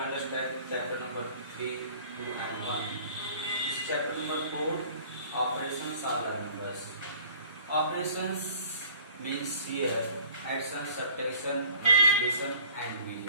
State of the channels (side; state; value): both; inverted; correlation -0.51